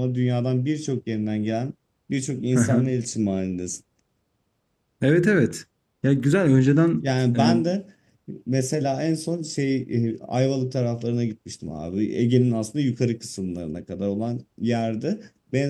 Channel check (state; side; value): identical; both; correlation 1.00